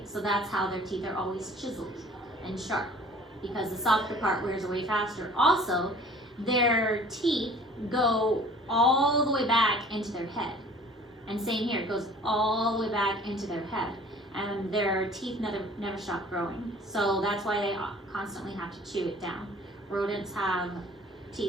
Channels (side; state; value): both; normal; correlation 0.49